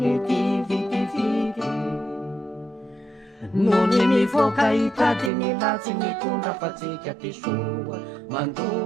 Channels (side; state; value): left; drops out; at 5.3 s